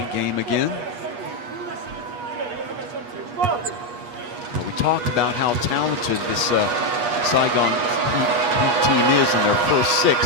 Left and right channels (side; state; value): left; late; 8.3 ms